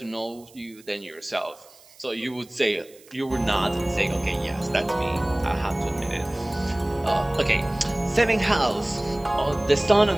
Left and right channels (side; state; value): right; noise; hiss, 25 dB below the sound